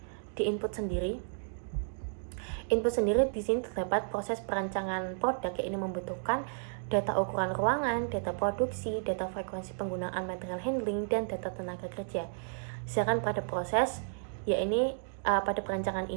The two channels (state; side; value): silent; left; digital silence